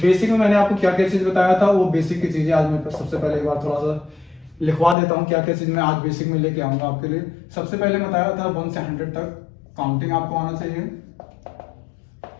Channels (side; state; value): right; drops out; at 5.0 s